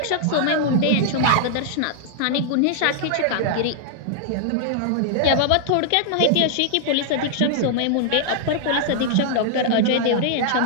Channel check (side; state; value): both; different; correlation -0.01